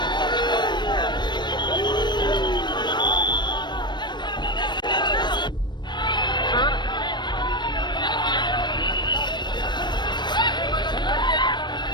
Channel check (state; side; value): late; right; 0.22 ms